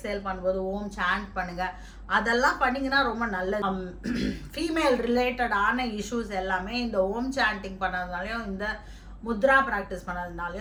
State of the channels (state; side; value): identical; both; correlation 1.00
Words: பண்ணும்போது ஓம் சாண்ட் பண்ணுங்கள். அதெல்லாம் பண்ணிங்கன்னா ரொம்ப நல்லது. ஃபீமேல் ரிலேட்டடான இஷ்யூஸ் எல்லாமே இந்த ஓம் சாண்டிங் பண்ணதுனாலையும் இந்த முத்ரா ப்ராக்டிஸ்